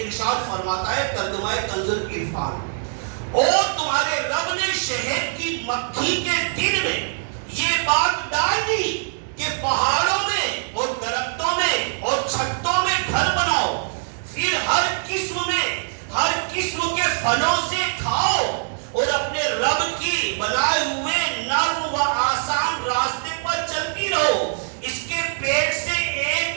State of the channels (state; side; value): silent; left; digital silence